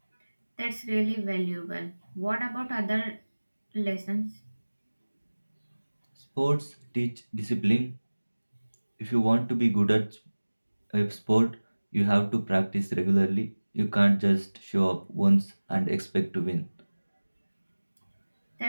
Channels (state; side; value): inverted; both; correlation -1.00